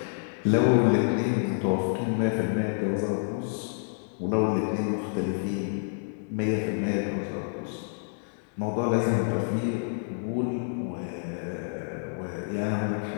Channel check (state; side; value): silent; right; digital silence